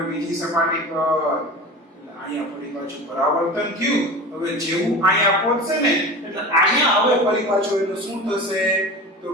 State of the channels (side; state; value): both; normal; correlation 0.32